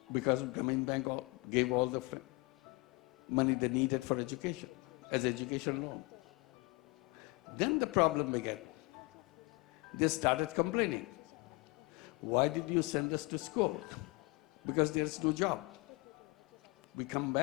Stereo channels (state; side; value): quieter; right; 25.5 dB